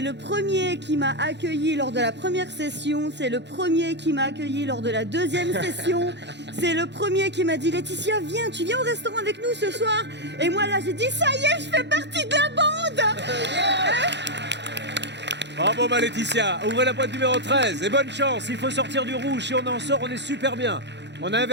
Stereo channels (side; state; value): left; late; 0.51 ms